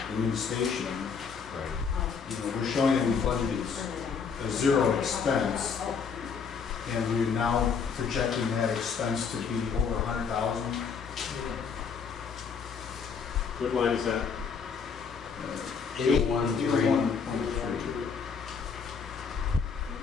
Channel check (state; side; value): quieter; right; 6.0 dB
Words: new station. Right. You know, we're showing that we budgeted a zero expense, and we're now projecting that expense to be over 100,000. What line is that? 813.